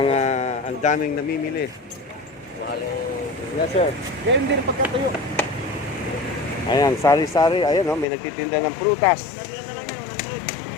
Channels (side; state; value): right; drops out; at 8.1 s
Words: ang daming namimili. Yes, sir. Ganyan din pagkatayo. Ayan, sari-sari. Ayan, oh, may nagtitinda ng prutas.